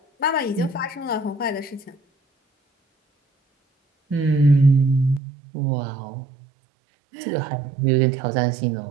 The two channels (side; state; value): left; drops out; at 5.2 s